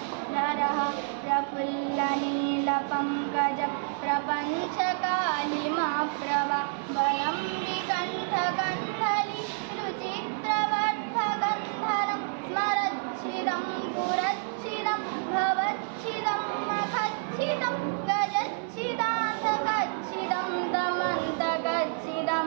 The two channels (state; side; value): silent; left; 59 dB below the other